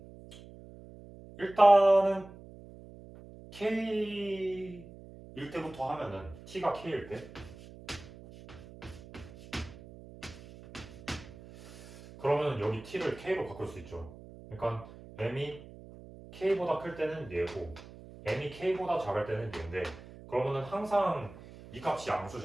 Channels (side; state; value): right; noise; hum, 17 dB below the sound